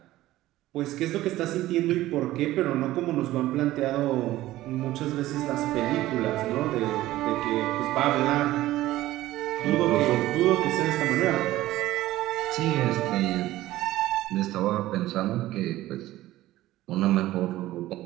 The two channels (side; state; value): left; quieter; 15.8 dB